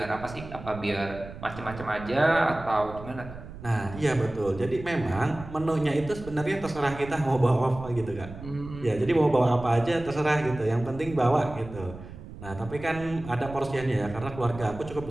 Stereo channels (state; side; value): noise; right; rumble, 14 dB below the sound